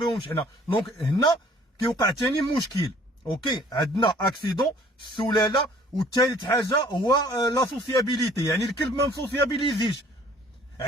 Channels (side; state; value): both; normal; correlation 0.56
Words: حنا. دونك هنا كيوقع ثاني مشكل. اوكي، عندنا اكسيدون، السلاله، والثالث حاجه هو لا سوسيابيليتي، يعني الكلب ما مسوسيابيليزيش.